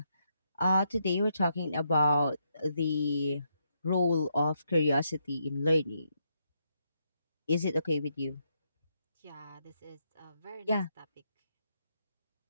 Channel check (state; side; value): inverted; both; correlation -0.79